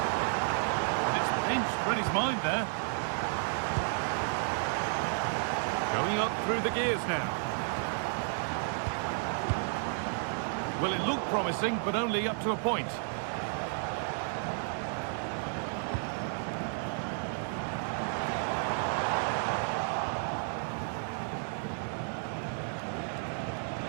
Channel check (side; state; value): left; silent; 56 dB below the other